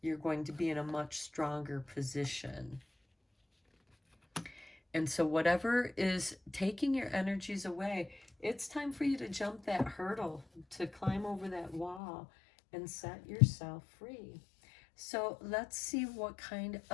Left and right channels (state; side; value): drops out; right; at 12.0 s